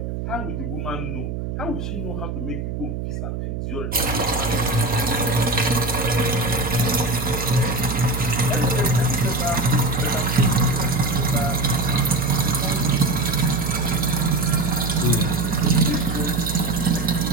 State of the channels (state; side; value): noise; right; hum, 4 dB below the sound